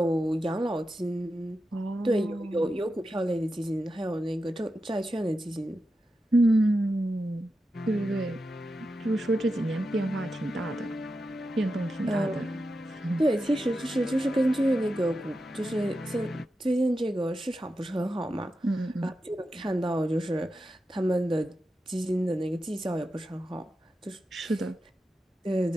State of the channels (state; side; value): normal; both; correlation 0.90